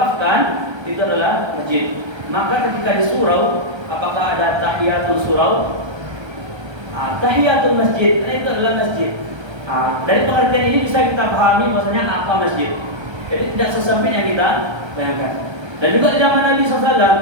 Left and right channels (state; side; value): late; left; 1.3 ms